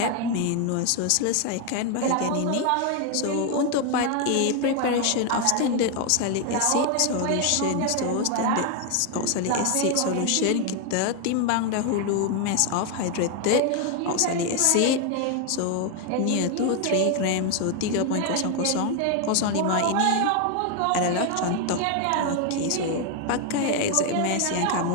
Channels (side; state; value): both; different; correlation 0.01